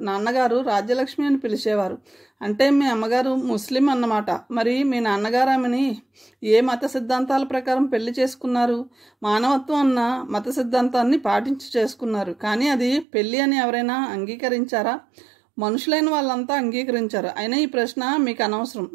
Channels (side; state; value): left; drops out; at 13.1 s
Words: నాన్నగారు రాజ్యలక్ష్మి అని పిలిచేవారు. అంటే మీ అమ్మగారు ముస్లిం అన్నమాట. మరి మీ నాన్నగారు ఆమెని ఏ మత సిద్ధాంతాల ప్రకారం పెళ్లి చేసుకున్నారు? మానవత్వం అన్న మత సిద్ధాంతాన్ని పాటించి చేసుకున్నారు. కానీ అది పెళ్లి అని ఎవరైనా అంగీకరించారా? మనుషులైన వాళ్ళంతా అంగీకరించారు. అయినా ఈ ప్రశ్న మీకు అనవసరం.